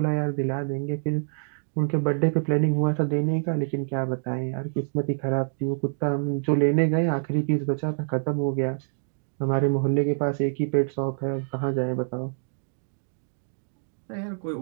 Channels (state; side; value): silent; left; digital silence